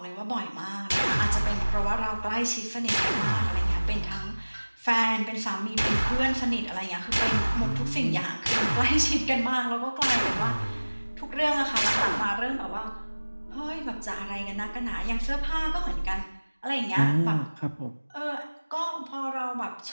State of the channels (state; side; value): inverted; both; correlation -1.00